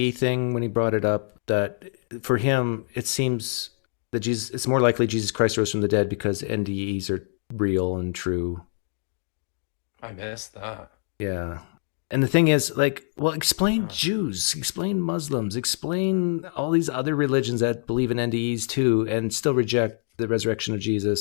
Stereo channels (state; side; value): silent; right; 62 dB below the other